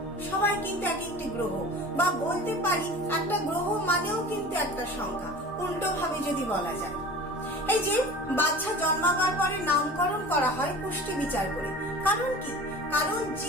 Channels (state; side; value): normal; both; correlation 0.39